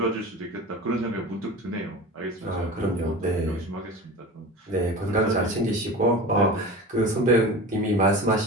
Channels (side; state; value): both; normal; correlation 0.32